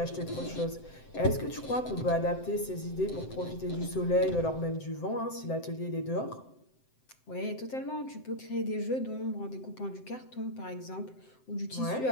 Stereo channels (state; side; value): late; right; 7.7 ms